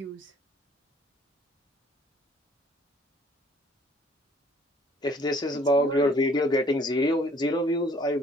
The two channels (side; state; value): both; normal; correlation 0.59